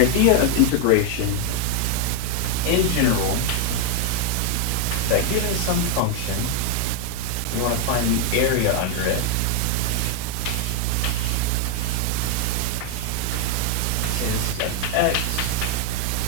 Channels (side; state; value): both; different; correlation 0.01